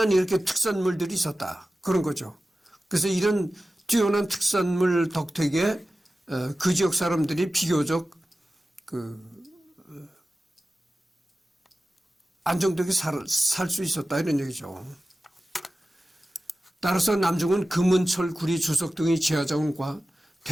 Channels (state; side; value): normal; both; correlation 0.95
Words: 이렇게 특산물들이 있었다. 그런 거죠. 그래서 이런 뛰어난 특산물 덕택에 그 지역 사람들이 비교적 안정되게 살 수 있었다 이런 얘기죠. 따라서 남중은 금은, 철, 구리, 주석 등의 지하자원과